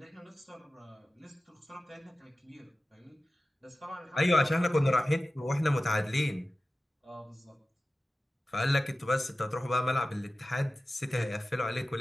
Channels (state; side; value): normal; both; correlation 0.95